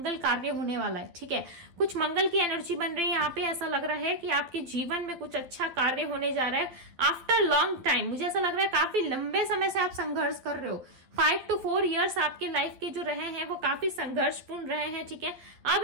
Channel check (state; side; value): late; left; 12 ms